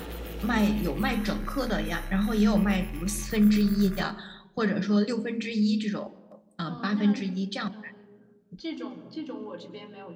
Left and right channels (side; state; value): both; identical; correlation 1.00